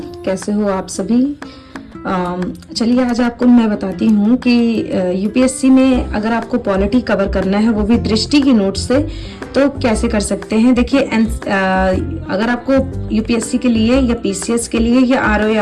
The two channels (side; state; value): both; identical; correlation 1.00